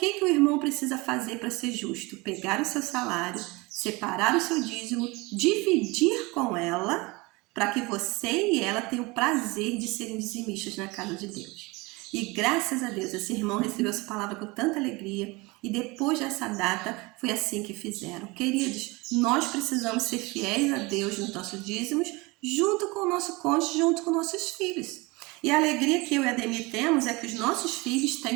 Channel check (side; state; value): left; quieter; 24.5 dB